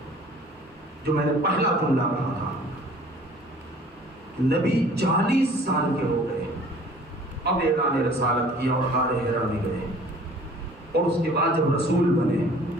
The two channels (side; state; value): both; normal; correlation 0.51